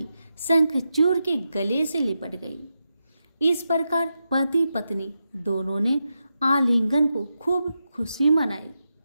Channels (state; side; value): inverted; both; correlation -0.88